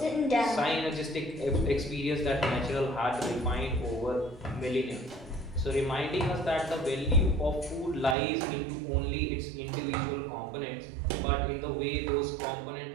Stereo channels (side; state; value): left; drops out; at 8.2 s